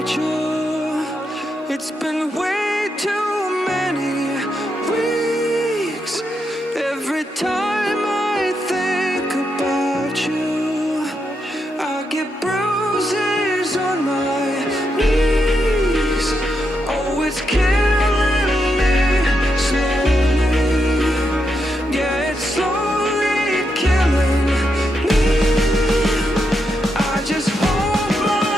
you. It's been way too many weeks. Every time I think about you, I get bruises on my knees. Oh, it's killing me slowly. Yeah, it's slowly killing me. I just hope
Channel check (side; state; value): both; normal; correlation 0.82